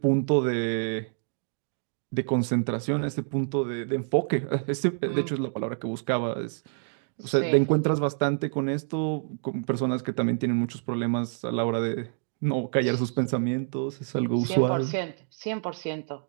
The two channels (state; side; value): silent; left; 60 dB below the other